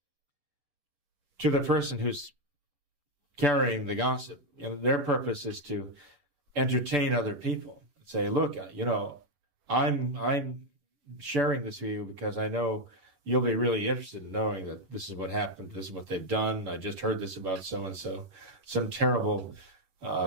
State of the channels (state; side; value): late; left; 11 ms